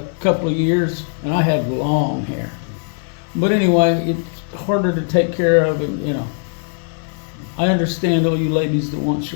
couple of years, and I had long hair. But anyway, it's harder to take care of, and I understand all you ladies that want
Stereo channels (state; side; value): silent; right; 56 dB below the other